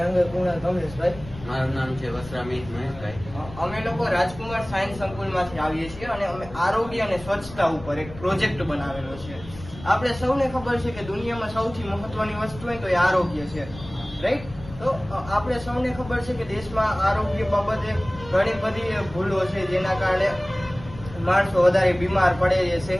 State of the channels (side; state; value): left; noise; rumble, 15 dB below the sound